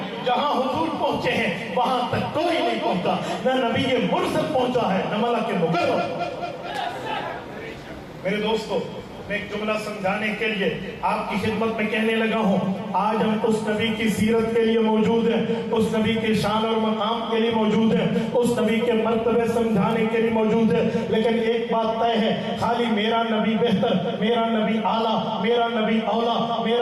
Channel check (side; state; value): both; identical; correlation 1.00